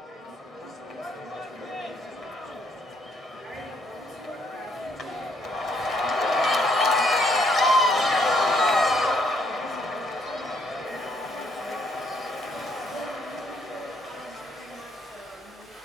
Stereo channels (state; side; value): normal; both; correlation 0.69